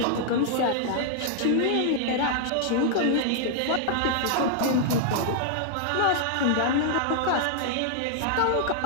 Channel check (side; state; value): both; different; correlation -0.01